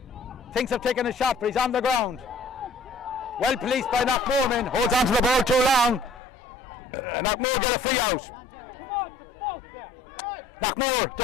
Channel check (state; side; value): drops out; right; at 6.2 s